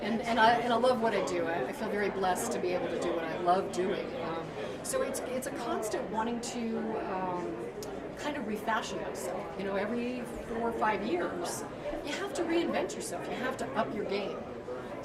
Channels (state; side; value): identical; both; correlation 1.00